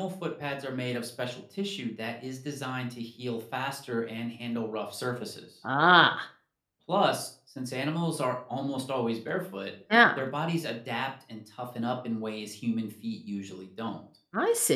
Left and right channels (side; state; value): both; identical; correlation 1.00